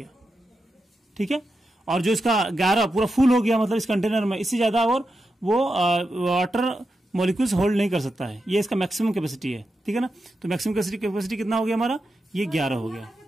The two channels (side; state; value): both; normal; correlation 0.88